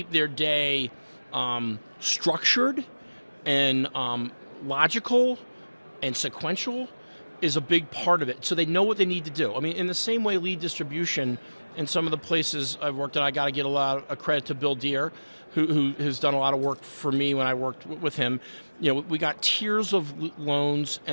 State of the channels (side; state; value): both; inverted; correlation -1.00